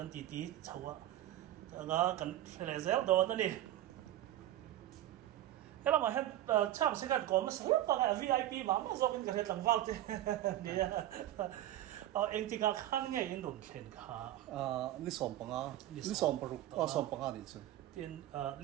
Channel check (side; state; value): left; quieter; 13.8 dB